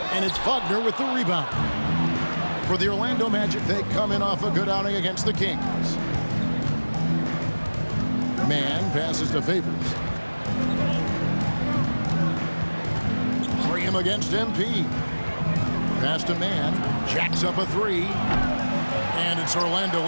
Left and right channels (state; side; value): inverted; both; correlation -1.00